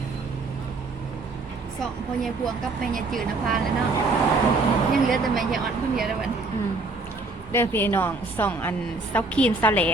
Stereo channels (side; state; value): left; quieter; 3.5 dB